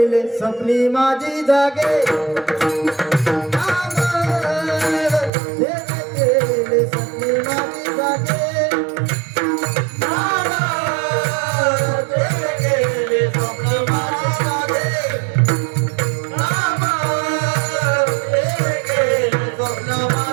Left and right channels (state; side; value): drops out; left; at 5.3 s